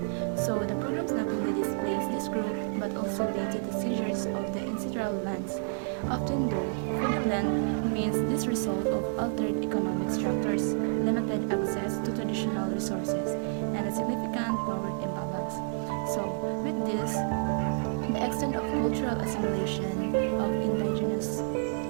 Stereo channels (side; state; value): left; silent; digital silence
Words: So, the programs not only displays this group but also lead to the seizures of the ancestral lands. Often though, for the land remains this result of altered economic structures, limited access to traditional resources, and a significant power imbalance. So, with this, the extent of cultural assimilation of indigenous